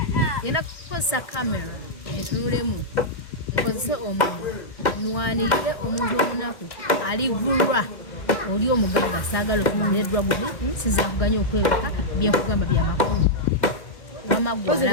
ngenda kukozesa kamera entunulemu, nkozese omumwa nwanirire omuntu omunaku alivulwa oli omugagga saagala okumanya Dragon sinza kuganya okwebaka byenkugamba byamakulu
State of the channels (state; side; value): late; right; 1.6 ms